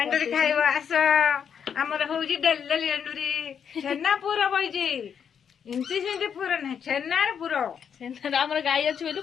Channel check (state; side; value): quieter; right; 7.6 dB